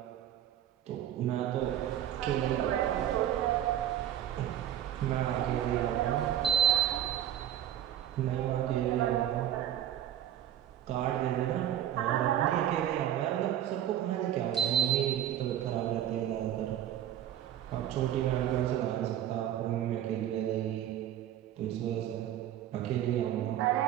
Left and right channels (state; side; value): quieter; left; 11.5 dB